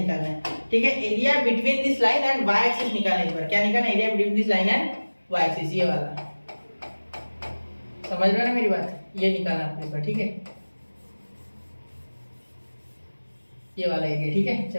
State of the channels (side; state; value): both; inverted; correlation -1.00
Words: है, ठीक है, area between this line and y axis निकालना है। इस बार क्या निकालना है, area between this line and y axis, ये वाला, समझ रहे हो ना मेरी बात, ये निकालना आपको इस बार, ठीक है, ये वाला एरिया, ठीक है।